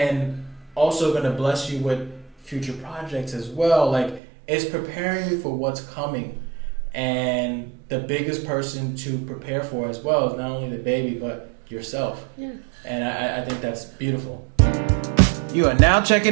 also going to bless you with future projects as well. Like, it's preparing you for what's coming. And the biggest person to prepare for as well is not only the baby, but yourself. Yeah. And I think that's beautiful. You are now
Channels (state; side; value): drops out; left; at 4.2 s